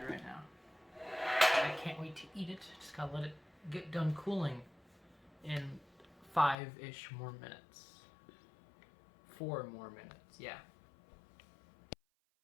right now. I can't wait to eat it. Just gotta let it get done cooling in 5-ish more minutes. 4 more minutes, yeah.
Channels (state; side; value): drops out; right; at 6.6 s